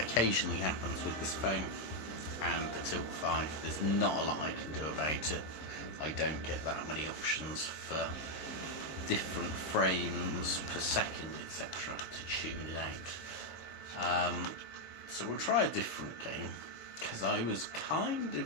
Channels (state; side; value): late; right; 26 ms